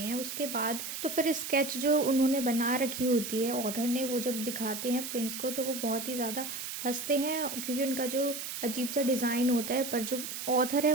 हैं। उसके बाद तो फिर स्केच जो उन्होंने बना रखी होती है ऑथर ने, वो जब दिखाते हैं प्रिंस को तो वो बहुत ही ज़्यादा हंसते हैं, क्योंकि उनका जो अजीब सा डिज़ाइन होता है। पर जो ऑथर है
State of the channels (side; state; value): right; noise; hiss, 6 dB below the sound